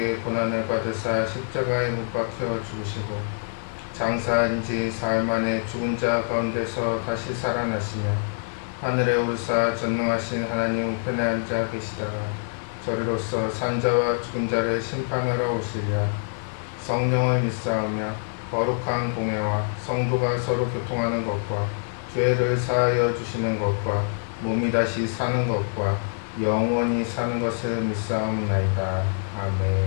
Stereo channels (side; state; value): right; silent; digital silence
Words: 고난을 받으사 십자가에 못 박혀 죽으시고 장사한 지 사흘 만에 죽은 자 가운데서 다시 살아나시며 하늘에 오르사 전능하신 하나님 우편에 앉아 계시다가 저리로서 산자와 죽은 자를 심판하러 오시리라. 성령을 믿사오며 거룩한 공회와 성도가 서로 교통하는 것과 죄를 사하여 주시는 것과 몸이 다시 사는 것과 영원히 사는 것을 믿사옵나이다.